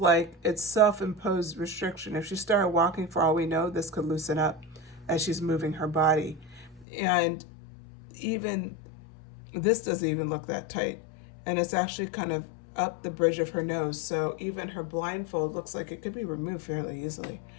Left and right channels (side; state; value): right; drops out; at 6.9 s